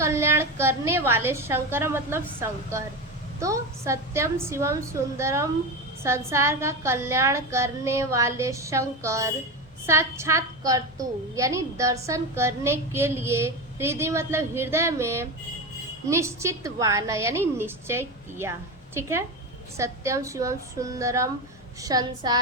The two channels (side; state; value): both; normal; correlation 0.20